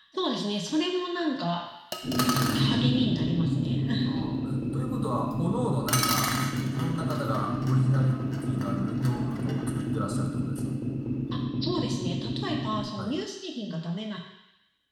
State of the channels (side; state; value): both; identical; correlation 1.00